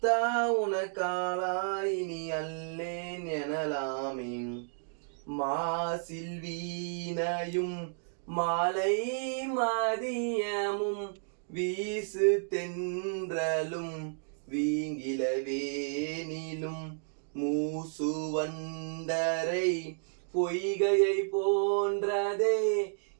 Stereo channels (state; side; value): silent; left; digital silence